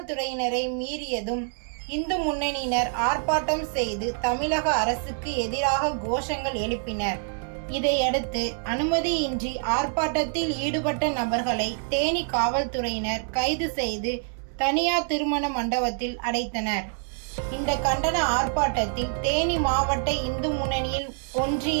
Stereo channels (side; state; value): left; silent; 57 dB below the other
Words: மீறியதும் இந்து முன்னணியினர் ஆர்ப்பாட்டம் செய்து தமிழக அரசுக்கு எதிராக கோஷங்கள் எழுப்பினர். இதையடுத்து அனுமதியின்றி ஆர்ப்பாட்டத்தில் ஈடுபட்ட நபர்களை தேனி காவல்துறையினர் கைது செய்து தனியார் திருமண மண்டபத்தில் அடைத்தனர். இந்த கண்டன ஆர்ப்பாட்டத்தில் தேனி மாவட்ட இந்து முன்னணியில்